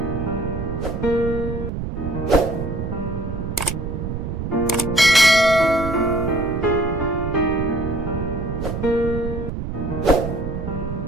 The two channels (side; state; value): right; noise; rumble, 5 dB below the sound